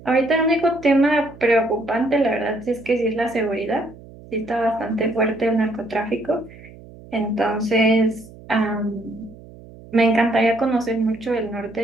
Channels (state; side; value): noise; right; hum, 20 dB below the sound